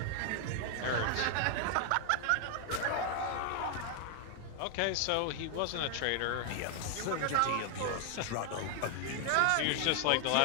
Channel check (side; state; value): both; different; correlation 0.00